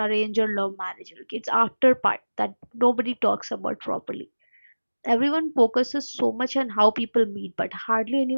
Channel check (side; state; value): both; inverted; correlation -1.00